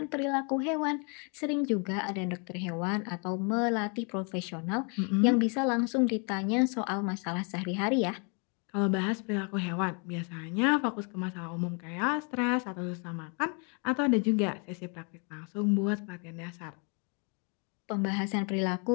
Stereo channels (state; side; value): quieter; right; 36.5 dB